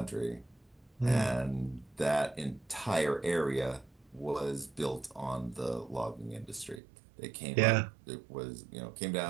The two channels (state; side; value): drops out; left; at 6.8 s